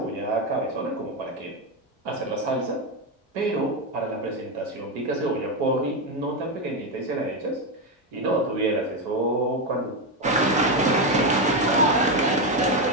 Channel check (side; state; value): both; normal; correlation 0.09